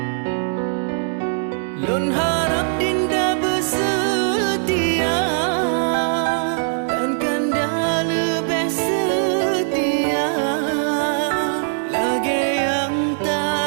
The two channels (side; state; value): left; silent; digital silence